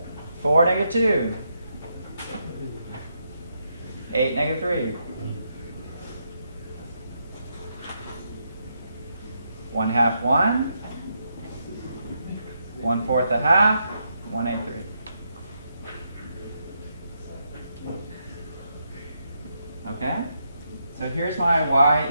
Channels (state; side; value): inverted; both; correlation -0.80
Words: 4, -2. 8, -3. 1/2, 1. 1/4 a half. 1/8, 3. Okay? So here's my y